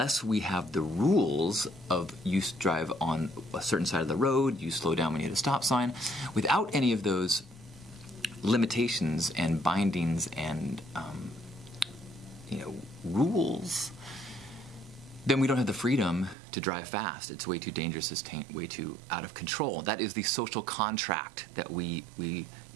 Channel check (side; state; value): left; drops out; at 16.4 s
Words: we have the rules of you drive on a certain side of the road, you slow down when you hit a stop sign, without any of those limitations and bindings and rules, then we don't have the freedom to drive fast. It's way too dangerous. It's way too out of control. That is the social contract that